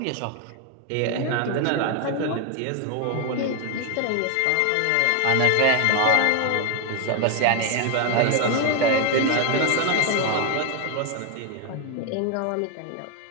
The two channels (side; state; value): both; different; correlation 0.01